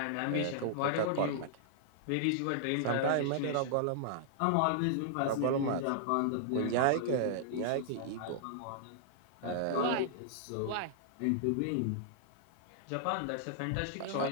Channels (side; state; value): both; different; correlation -0.01